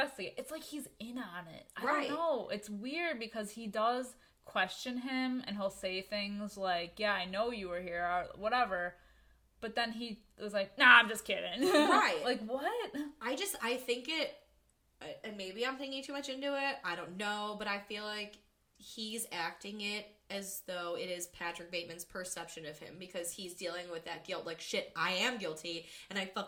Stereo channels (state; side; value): identical; both; correlation 1.00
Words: It's like he's in on it. I don't know. It's weird because he does question him and he'll say things like, yeah, I know you were here, or whatever. But then he was like, nah, I'm just kidding. Right. Like, what? I think it, and maybe I'm thinking too much into it. I don't know, but I feel like he's acting it as though it is Patrick Bateman's perception of him because he's dealing with that guilt. Like, shit, I am guilty and I